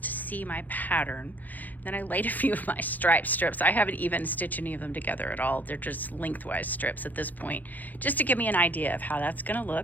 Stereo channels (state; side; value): late; right; 0.083 ms